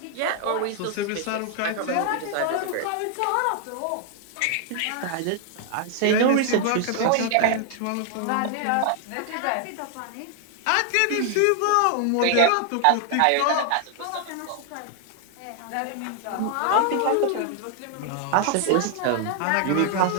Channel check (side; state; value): both; different; correlation 0.00